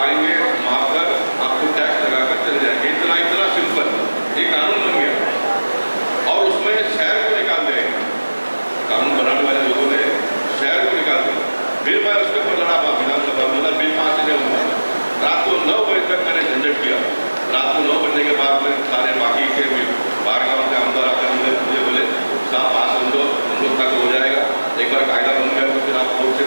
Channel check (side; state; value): both; inverted; correlation -1.00